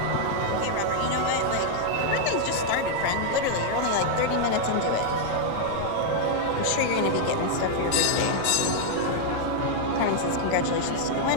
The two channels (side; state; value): both; different; correlation -0.01